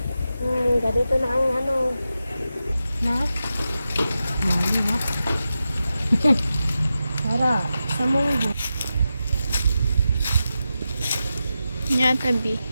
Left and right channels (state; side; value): inverted; both; correlation -0.90